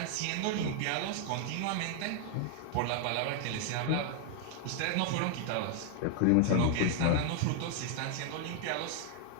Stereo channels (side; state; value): both; different; correlation 0.00